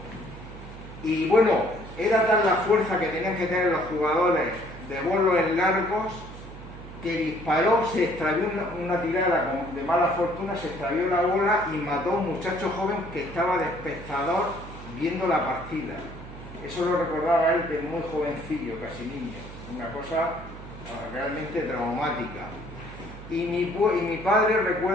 Y bueno, era tal la fuerza que tenían que tener los jugadores de bolos en largos, que disparó, se extravió una tirada de mala fortuna, se extravió la bola y mató a un muchacho joven que estaba de espectador viendo la partida. Eso lo recordaba él de muy jovencillo, casi niño, una cosa realmente traumática. Y mi padre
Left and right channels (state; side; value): noise; right; hum, 14 dB below the sound